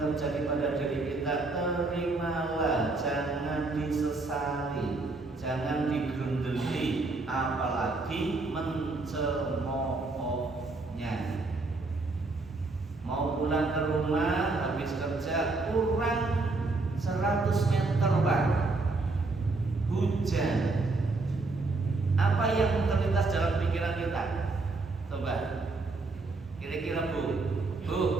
pada diri kita, terimalah, jangan disesali, jangan digerundeli, apalagi mencemoohnya. Mau pulang ke rumah habis kerja kurang 100 meter Pak, hujan. Apa yang terlintas dalam pikiran kita? Coba kira-kira Bu,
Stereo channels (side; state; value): left; quieter; 3.4 dB